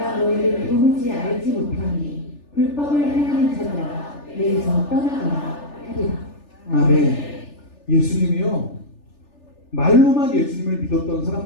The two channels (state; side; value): late; right; 3.4 ms